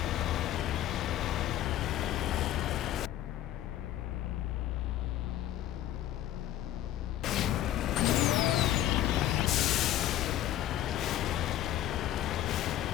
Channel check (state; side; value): quieter; right; 12.7 dB